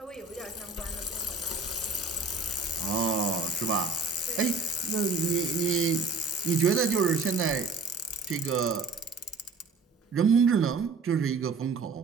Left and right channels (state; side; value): quieter; left; 4.1 dB